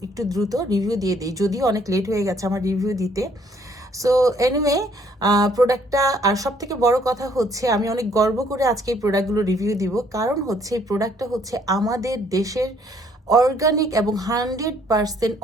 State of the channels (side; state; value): both; normal; correlation 0.64